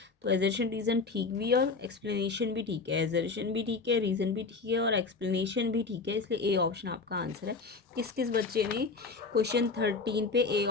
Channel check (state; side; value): quieter; right; 4.3 dB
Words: तो एजर्शन रीज़न ठीक भी है और एक्सप्लेनेशन भी ठीक है। एजर्शन भी ठीक है, रीज़न भी ठीक है और एक्सप्लेनेशन भी ठीक है, इसलिए ए ऑप्शन आपका आंसर है। किस किस बच्चे ने क्वेश्चन 13 पे ए